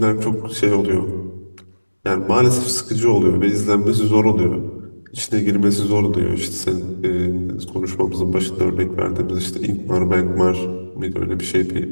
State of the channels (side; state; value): both; inverted; correlation -1.00